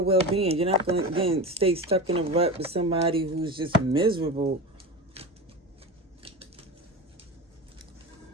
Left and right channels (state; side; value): normal; both; correlation 0.27